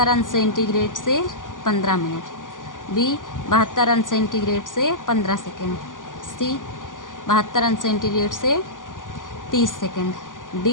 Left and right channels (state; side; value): late; right; 0.88 ms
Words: अंश सेंटीग्रेड से 15 मिनट, बी 72 अंश सेंटीग्रेड से 15 सेकेंड, सी 72 अंश सेंटीग्रेड से 30 सेकेंड,